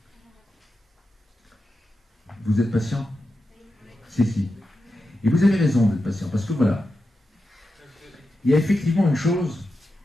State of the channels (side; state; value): both; normal; correlation 0.89